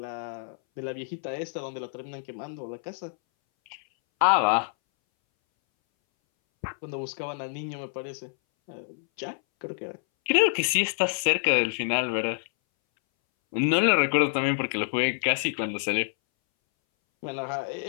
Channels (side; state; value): right; silent; 60 dB below the other